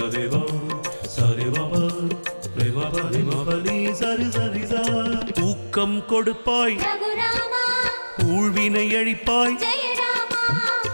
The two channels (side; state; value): both; inverted; correlation -1.00